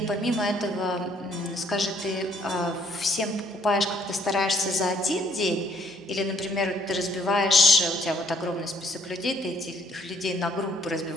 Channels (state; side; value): normal; both; correlation 0.65